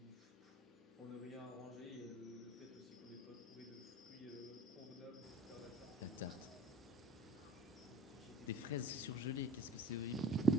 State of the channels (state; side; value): normal; both; correlation 0.46